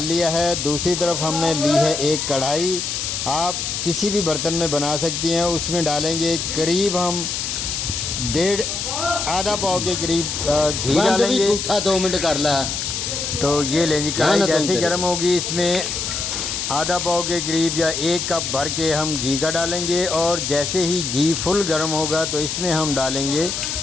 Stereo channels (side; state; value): left; noise; hiss, 3 dB below the sound